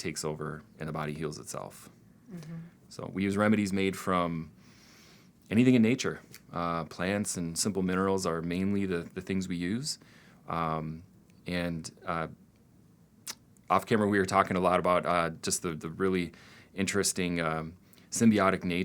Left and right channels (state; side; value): identical; both; correlation 1.00